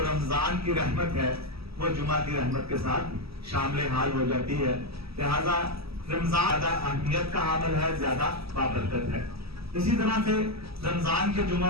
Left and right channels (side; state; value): left; late; 0.77 ms